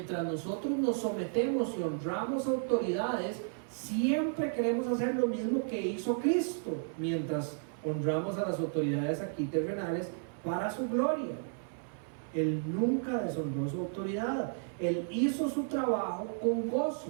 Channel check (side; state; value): left; silent; 56 dB below the other